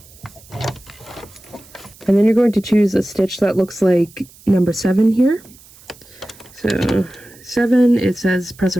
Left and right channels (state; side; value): noise; right; hiss, 24 dB below the sound